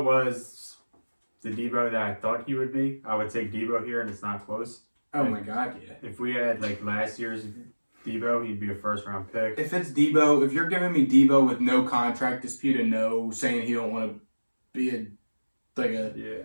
was the Debo that I thought he would be, I would take Debo here, and it's not close. Oh my God, yeah. If we had like last year's Debo, he'd be a first-round pick. If it's Debo, if you're giving me Debo with no contract dispute and no saying he don't want to be a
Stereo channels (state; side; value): inverted; both; correlation -1.00